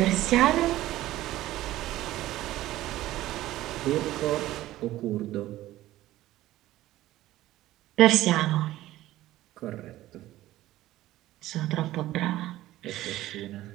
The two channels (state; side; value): quieter; left; 15.4 dB